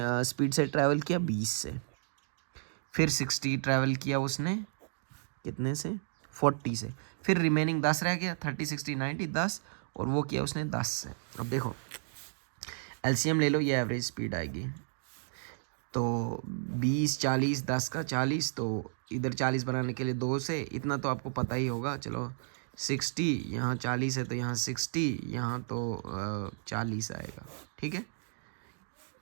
स्पीड से ट्रैवल किया, 20 से। फिर 60 ट्रैवल किया उसने कितने से, 40 से। फिर रिमेनिंग 10 रह गया, 30, 60, 90, 10, और वो किया उसने 10 से। अब देखो एलसीएम ले लो, ये एवरेज स्पीड आएगी, तो 20, 40, 10 का 40, तो इधर 40 बनाने के लिए 2 से, इतना तो आपको पता ही होगा। चलो 60, यहाँ 40 है तो यहाँ 60, यहाँ तो 40 आएगा, ठीक है,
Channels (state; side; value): silent; left; digital silence